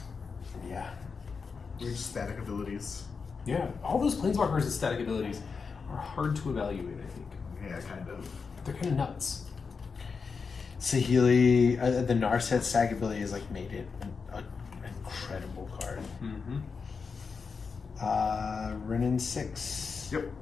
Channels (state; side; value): quieter; right; 5.2 dB